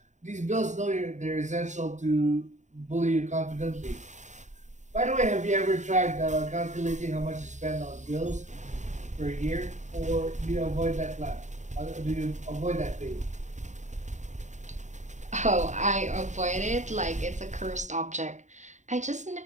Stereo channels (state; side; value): late; left; 0.35 ms